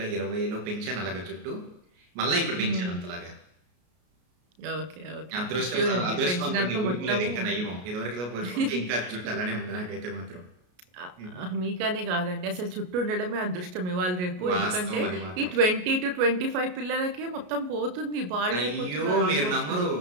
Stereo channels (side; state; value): left; late; 33 ms